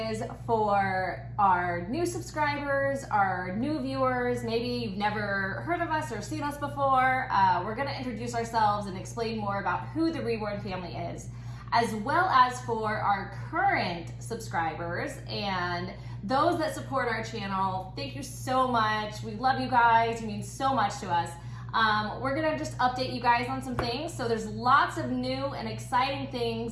for our new subscribers, our new viewers. Maybe you've never heard of us or seen us before. We're going to introduce ourselves and explain more about who the Reborn family is, as well as for our current subscribers and those that support our channel. Thank you so much. We love you guys. You mean so much to us. We're gonna just update you guys on some things. So there's lots of new and exciting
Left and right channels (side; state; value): both; identical; correlation 1.00